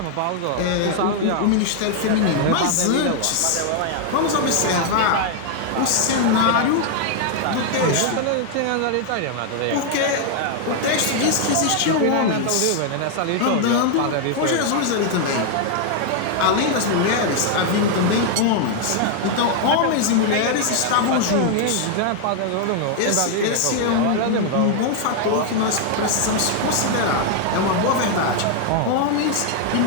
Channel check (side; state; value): both; different; correlation 0.00